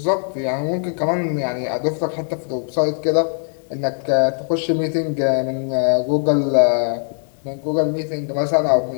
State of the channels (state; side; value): silent; right; 58 dB below the other